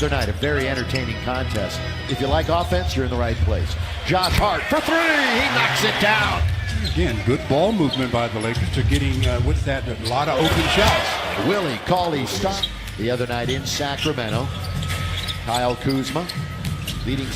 night a very entertaining contest. If you like offense, you're in the right place. Josh Hart for three. He knocks it down. Again, good ball movement by the Lakers to getting with that a lot of open shots. Willie Cauley-Stein the other night in Sacramento. Kyle Kuzma, leading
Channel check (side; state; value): both; identical; correlation 1.00